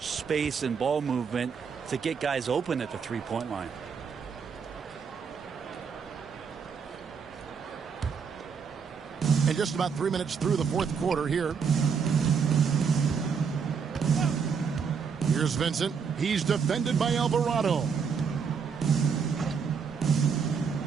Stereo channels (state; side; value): quieter; left; 6.2 dB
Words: and ball movement to get guys open at the three-point line. And just about 3 minutes through the fourth quarter here. Here's Vincent. He's defended by Alvarado.